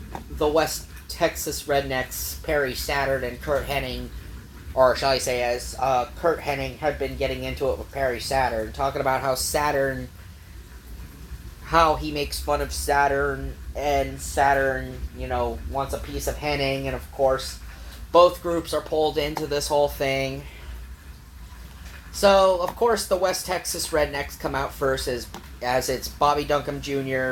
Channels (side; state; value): both; identical; correlation 1.00